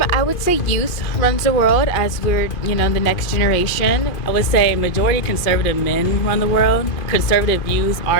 I would say youth runs the world as we're, the next generation. I would say majority conservative men run the world. Conservative views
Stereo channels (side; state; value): right; late; 2.5 ms